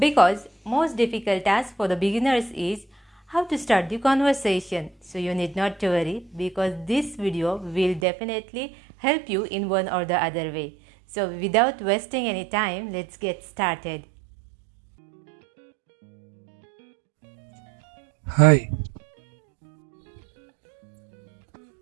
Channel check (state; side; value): drops out; left; at 8.1 s